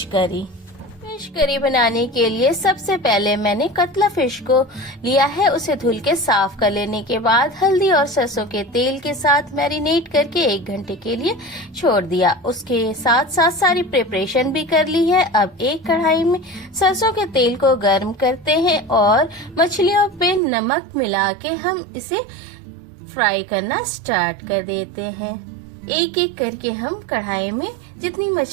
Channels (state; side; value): drops out; left; at 20.4 s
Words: करी। फिश करी बनाने के लिए सबसे पहले मैंने कतला फिश को लिया है। उसे धुल के साफ कर लेने के बाद हल्दी और सरसों के तेल के साथ मैरिनेट करके 1 घंटे के लिए छोड़ दिया। उसके साथ साथ सारी प्रिपरेशन भी कर ली है। अब एक कढ़ाई में सरसों के तेल को गर्म करते हैं और मछलियों पे नमक मिला के हम इसे फ्राई करना स्टार्ट कर देते हैं। एक एक करके हम कढ़ाई में जितनी